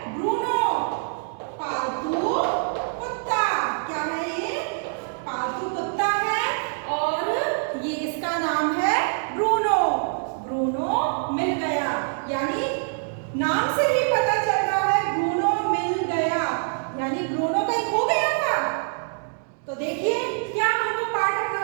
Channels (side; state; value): left; silent; digital silence